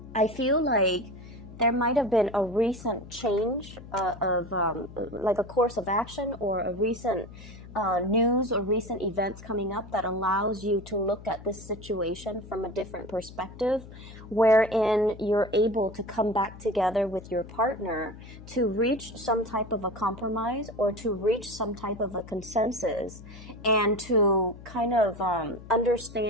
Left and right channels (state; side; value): noise; left; hum, 16 dB below the sound